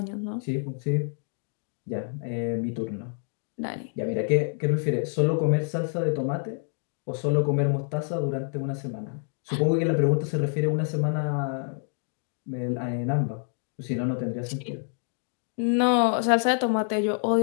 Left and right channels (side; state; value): right; silent; 60 dB below the other